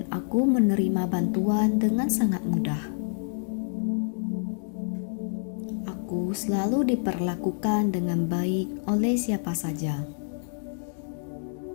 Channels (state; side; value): silent; right; digital silence